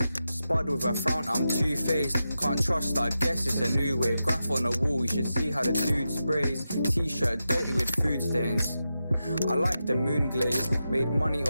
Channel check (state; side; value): inverted; both; correlation -0.90